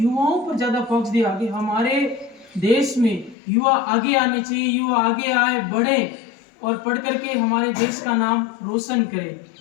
पर ज्यादा फोकस दिया कि हमारे देश में युवा आगे आने चाहिए, युवा आगे आए, बढ़े और पढ़ करके हमारे देश का नाम रोशन करें।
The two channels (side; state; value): right; drops out; at 3.4 s